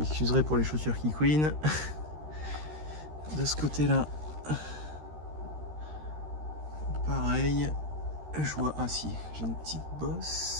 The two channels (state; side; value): late; left; 13 ms